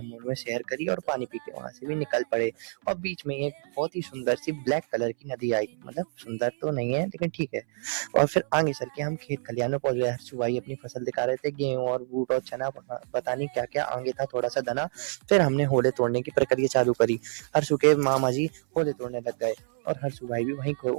मोड़ में सैर करी और पानी पी के वहां से भी निकल पड़े। और बीच में एक बहुत ही सुंदर सी ब्लैक कलर की नदी आई, मतलब सुंदर तो नहीं है लेकिन ठीक है। और फिर आगे चल के हम खेत खलिहान में पहुंच गए। हर्षू भाई अपनी फसल दिखा रहे थे, गेहूं और बूट और चना, पता नहीं क्या क्या आगे था थोड़ा सा धना। फिर हमने होले तोड़ने की प्रक्रिया चालू करी। हर्षू के मामा जी होले तोड़ने लग गए, और हर्षू भाई भी वहीं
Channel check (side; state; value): left; silent; 60 dB below the other